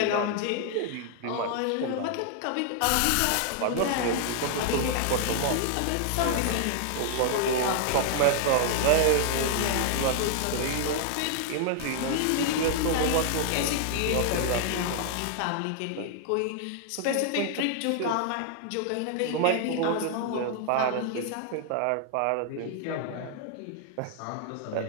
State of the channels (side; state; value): both; different; correlation 0.00